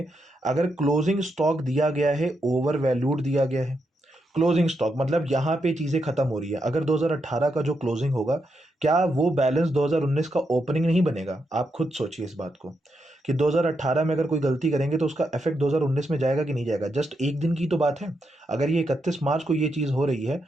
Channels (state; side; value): normal; both; correlation 0.83